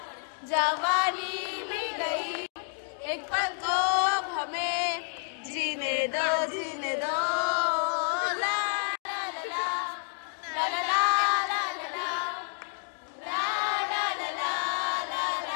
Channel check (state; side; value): silent; right; 58 dB below the other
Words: जवानी भी गई, एक पल को अब हमें जीने दो जीने दो।